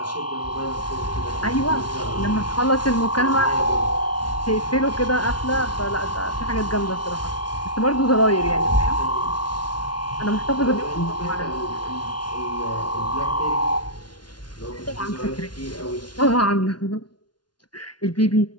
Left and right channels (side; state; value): right; late; 0.70 ms